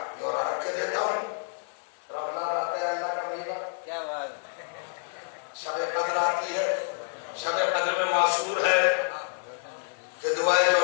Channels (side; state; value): right; silent; digital silence